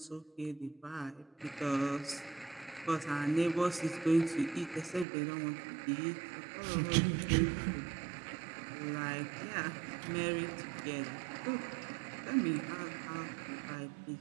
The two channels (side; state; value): left; drops out; at 5.1 s